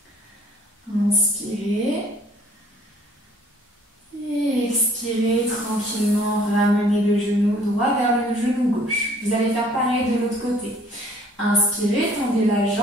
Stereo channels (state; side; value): normal; both; correlation 0.57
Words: Inspirez. Et expirez tranquillement, ramenez le genou droit vers le genou gauche. Vous allez faire pareil de l'autre côté. Inspirez, tendez la